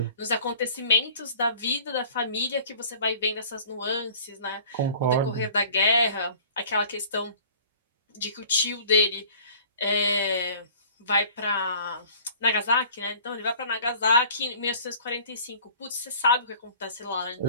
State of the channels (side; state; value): both; inverted; correlation -0.49